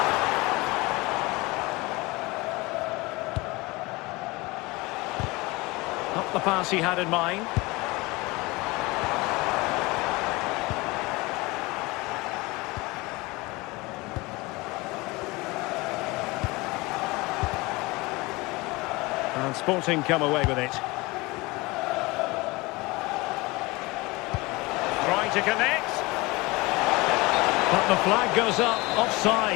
Not the pass he had in mind. And Sporting come away with it. Trying to connect. But the flag goes up,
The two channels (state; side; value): quieter; right; 23.1 dB